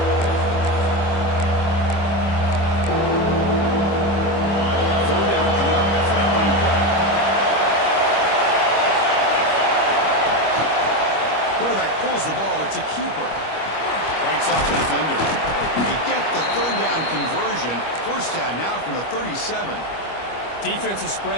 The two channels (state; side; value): late; right; 25 ms